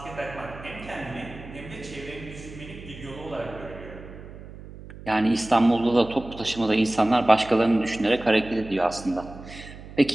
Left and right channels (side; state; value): right; noise; hum, 15 dB below the sound